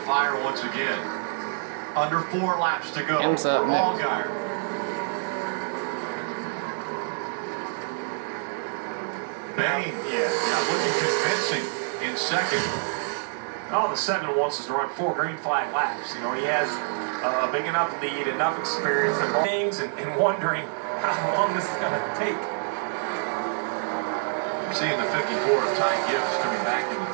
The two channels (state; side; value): silent; left; 60 dB below the other